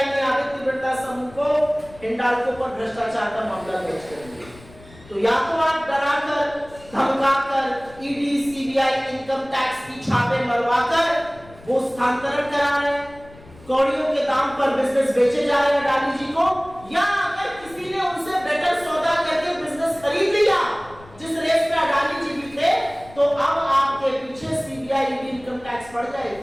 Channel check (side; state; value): left; noise; rumble, 22 dB below the sound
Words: ने आदित्य बिरला समूह को हिंडाल्को पर भ्रष्टाचार का मामला दर्ज कर दिया। तो या तो आप डराकर धमकाकर ईडी सीबीआई इनकम टैक्स की छापे मरवाकर वो स्थानांतरण करा रहे हैं, कौड़ियों के दाम पर बिजनेस बेचे जा रहे हैं अडानी जी को, या अगर किसी ने उनसे बेटर सौदा करके बिजनेस खरीद लिया जिस रेस में अडानी जी भी थे, तो अब आपके पीछे सीबीआई ईडी इनकम टैक्स पड़